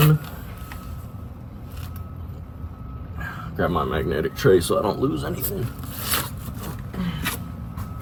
Grab my magnetic tray so I don't lose anything.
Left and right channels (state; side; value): identical; both; correlation 1.00